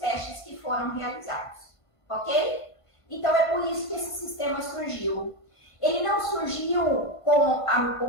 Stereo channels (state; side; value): late; right; 1.5 ms